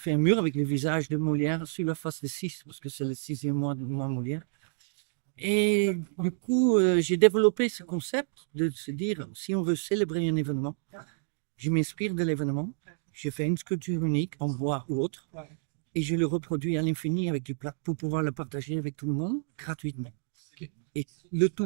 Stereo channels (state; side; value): silent; left; digital silence